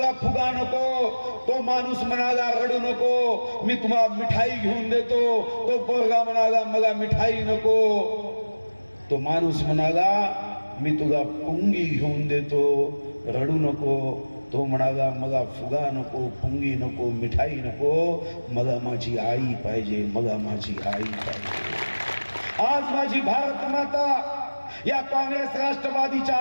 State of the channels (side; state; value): both; inverted; correlation -1.00